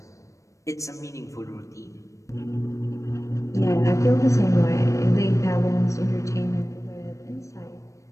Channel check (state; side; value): late; right; 0.15 ms